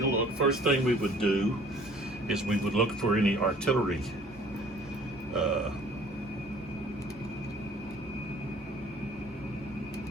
a look. First thing we would do is we would look for any artillery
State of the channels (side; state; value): both; normal; correlation 0.54